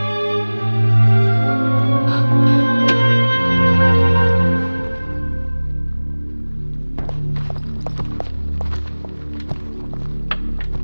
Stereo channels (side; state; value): both; inverted; correlation -1.00